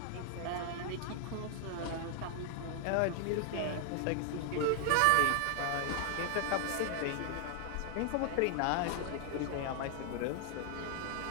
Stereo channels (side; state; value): both; different; correlation 0.00